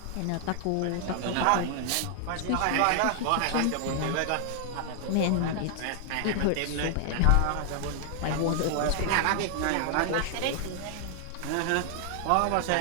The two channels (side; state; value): both; different; correlation 0.00